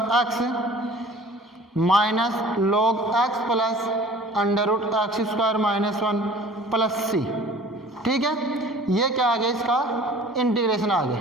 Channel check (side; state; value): both; normal; correlation 0.47